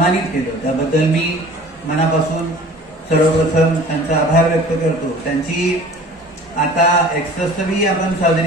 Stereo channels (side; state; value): both; normal; correlation 0.45